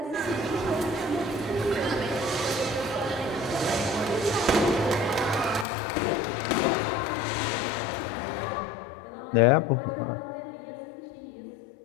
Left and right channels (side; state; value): right; drops out; at 5.7 s